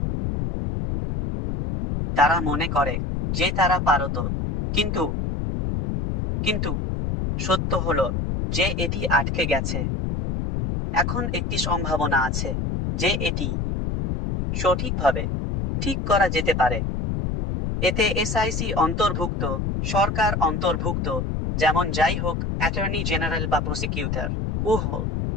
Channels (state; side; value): noise; left; rumble, 1 dB below the sound